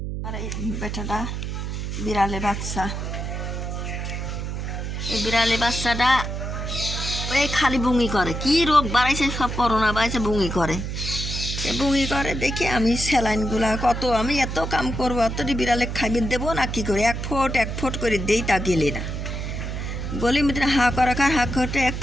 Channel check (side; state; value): right; noise; hum, 4 dB below the sound